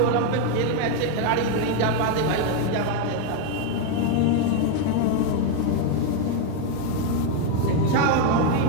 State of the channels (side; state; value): both; different; correlation 0.01